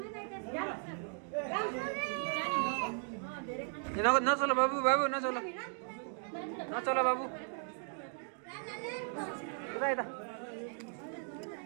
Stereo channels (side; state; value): left; silent; 53 dB below the other